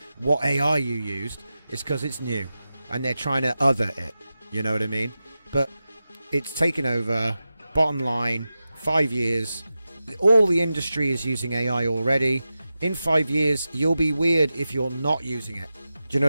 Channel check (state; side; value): inverted; both; correlation -0.93